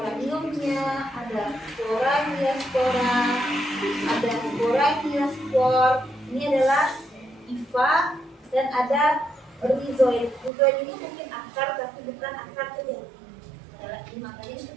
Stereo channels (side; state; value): left; drops out; at 10.5 s